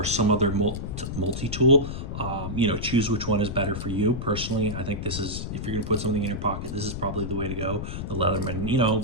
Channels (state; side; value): noise; left; rumble, 6 dB below the sound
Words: some other multi-tool. Choose which one is better for you. Personally, I think this is, if you're gonna put something in your pocket, this is probably the way to go. The